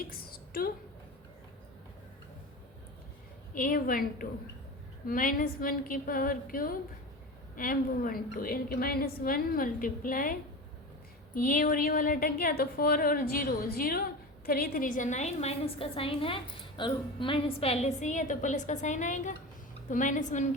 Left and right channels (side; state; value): both; normal; correlation 0.28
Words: 2 A12 -1 की पावर क्यूब M12 यानी कि -1 मल्टीप्लाई ये और ये वाला अटक गया तो 4 और 0 0 3 3 जा 9 माइनस का साइन है और माइनस पहले से ही है तो प्लस का साइन आएगा तो -1